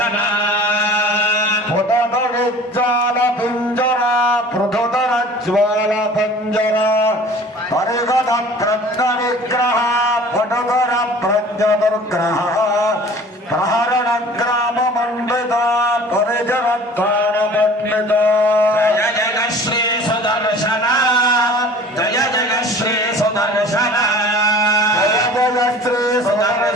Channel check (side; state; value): both; normal; correlation 0.45